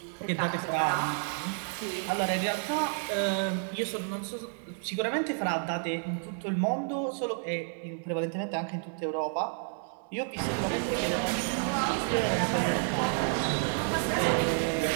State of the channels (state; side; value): silent; left; 58 dB below the other